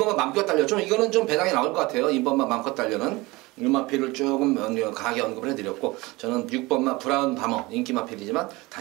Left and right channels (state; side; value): quieter; left; 22.4 dB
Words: 맘껏 달렸죠. 이거는 좀 배당이 나올 것 같아요. 2번만 맘껏 달려는 이 마필을 조금 강하게 언급을 해드렸고 저는 6번만 브라운 바머 인기 마필이지만